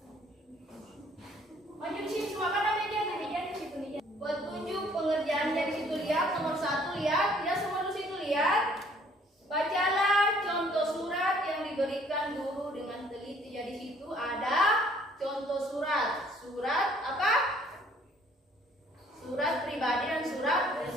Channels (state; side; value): normal; both; correlation 0.59